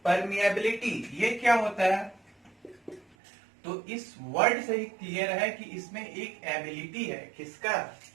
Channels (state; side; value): drops out; left; at 3.2 s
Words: परमिएबिलिटी, ये क्या होता है। तो इस वर्ड से ही क्लियर है कि इसमें एक एबिलिटी है। किसका?